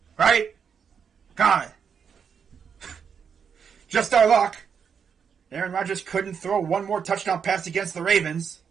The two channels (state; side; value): quieter; left; 6.9 dB